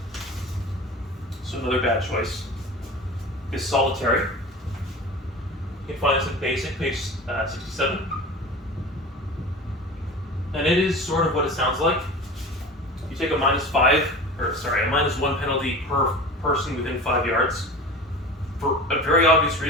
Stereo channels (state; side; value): normal; both; correlation 0.35